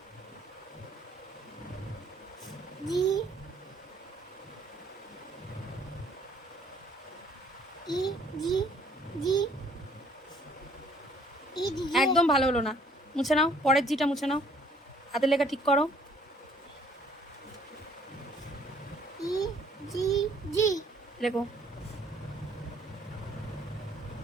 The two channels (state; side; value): normal; both; correlation 0.60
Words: জি ই জি জি ই দিদি একদম ভালো হলো না, মুছে নাও। পরের জিটা মুছে নাও, হাতের লেখা ঠিক করো। ই জি জি লেখো।